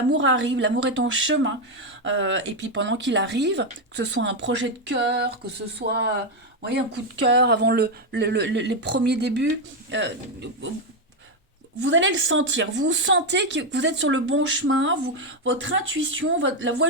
arrive, l'amour est en chemin. Et puis pendant qu'il arrive, que ce soit un projet de cœur, que ce soit vous voyez, un coup de cœur avant les premiers débuts, vous allez le sentir. Vous sentez que vous êtes sur le bon chemin. Votre intuition, la voix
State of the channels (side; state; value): both; normal; correlation 0.05